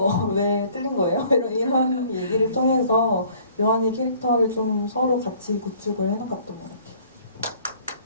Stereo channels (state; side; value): inverted; both; correlation -0.56